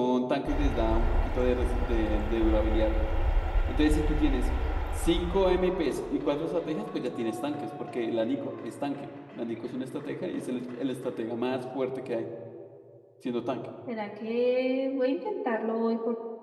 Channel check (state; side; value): identical; both; correlation 1.00